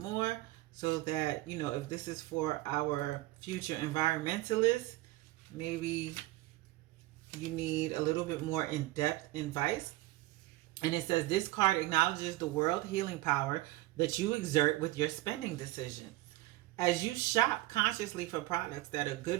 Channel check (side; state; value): left; quieter; 18.5 dB